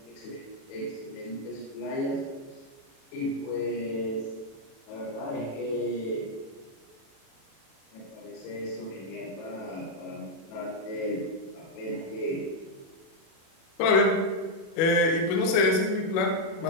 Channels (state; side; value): late; right; 37 ms